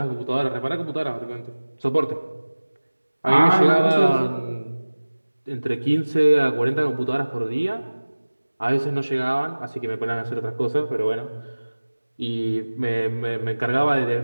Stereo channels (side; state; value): both; inverted; correlation -1.00